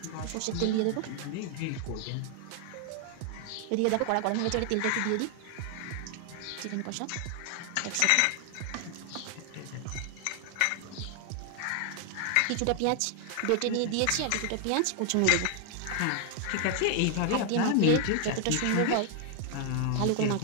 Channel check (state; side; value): different; both; correlation 0.00